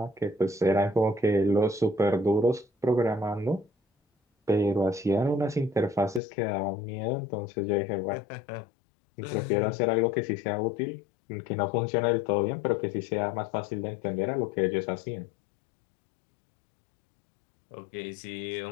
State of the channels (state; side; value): drops out; right; at 6.2 s